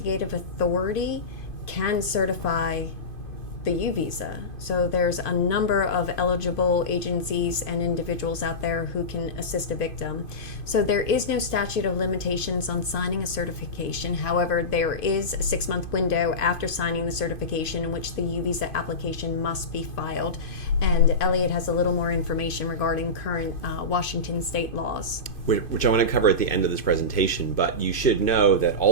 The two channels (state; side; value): late; right; 2.5 ms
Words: authority can certify the U visa. So there's a number of eligible agencies and individuals out there who can assist a victim. So there is no statute of limitations on signing a certification. However, there is a 6-month window after signing the certification in which the U visa application must be filed. And Elliot has a little more information regarding current Washington state laws. Which I want to cover at the end of this presentation, but you should know that